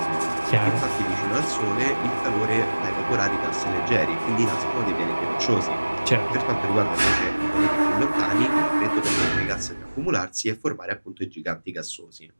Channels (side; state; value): both; inverted; correlation -1.00